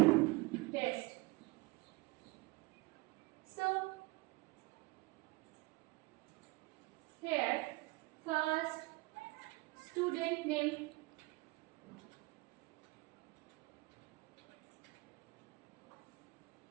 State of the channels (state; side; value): quieter; left; 23.6 dB